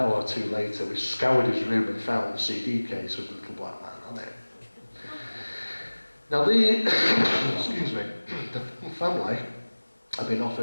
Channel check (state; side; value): inverted; both; correlation -1.00